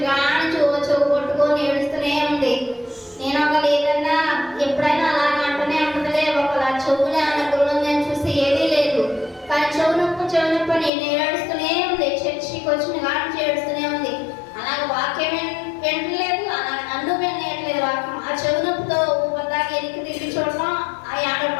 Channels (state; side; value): drops out; right; at 10.9 s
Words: కానీ చెవు కొట్టుకొని ఏడుస్తూనే ఉంది. నేను ఒకళ్ళు ఏదన్నా ఎప్పుడైనా అలాగే అంటూనే ఉంటుందిలే, ఒకలా చెవులే అన్న గురువుందని చూస్తే ఏదీ లేదు. కానీ చెవు నొప్పి నేను ఏడుస్తూనే ఉంది. చర్చికి వచ్చిన కానీ ఏడుస్తూనే ఉంది. అలాగే వాక్యం వింటలేదు, అలాగే నన్ను వినట్లేదు వాక్యం. ఆ చెవు నొప్పితో ఊపదాకా ఎనికి తిరిగి చూడటం, ఆ